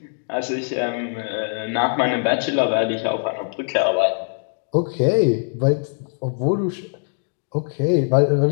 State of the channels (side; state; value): right; silent; 63 dB below the other